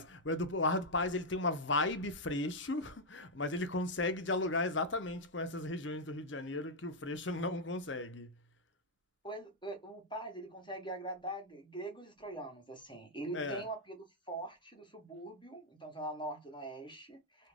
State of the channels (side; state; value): both; normal; correlation -0.01